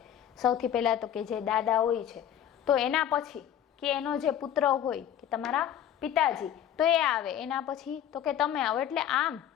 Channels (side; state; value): right; quieter; 10.3 dB